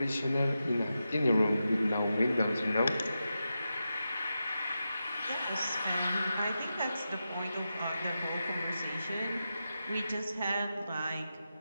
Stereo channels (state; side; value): inverted; both; correlation -0.90